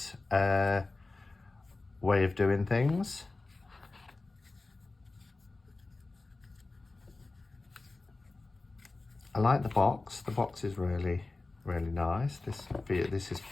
way of doing things. I like the box. The box is really, really nice. This is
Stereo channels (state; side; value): quieter; right; 3.3 dB